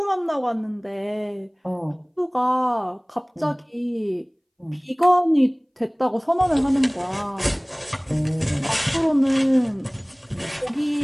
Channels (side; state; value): both; identical; correlation 1.00